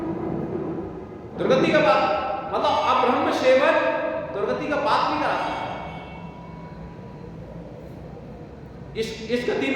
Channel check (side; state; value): both; identical; correlation 1.00